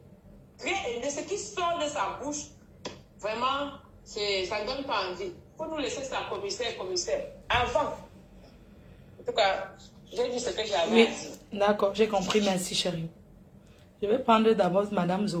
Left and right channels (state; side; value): identical; both; correlation 1.00